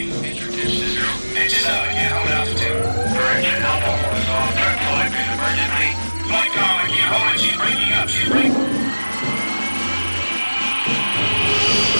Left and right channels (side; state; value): both; inverted; correlation -1.00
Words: Introduce to 0. Engine up, I can't hold altitude. Correction, Alpha 4 is off. Turn flight, please, emergency. Flight calm, I can't hold it. She's breaking up. She's breaking.